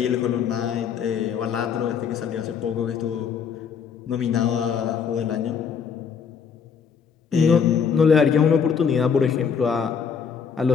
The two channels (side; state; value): right; quieter; 6.6 dB